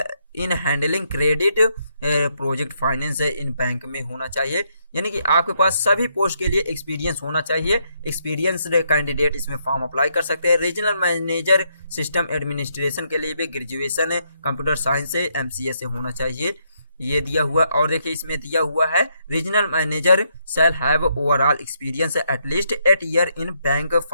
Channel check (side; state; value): both; inverted; correlation -0.75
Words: इन handling credit project finance in bank में होना चाहिए, यानी कि आपके पास सभी पोस्ट के लिए एक्सपीरियंस होना चाहिए। एक्सपीरियंस कैंडिडेट इसमें फॉर्म अप्लाई कर सकते हैं। रीजनल मैनेजर सिस्टम एडमिनिस्ट्रेशन के लिए भी ग्रेजुएशन कंप्यूटर साइंस से MCA से होना चाहिए, ये दिया हुआ। और देखिए इसमें दिया हुआ है regional manager shall have overall experience at least 8 year in bank,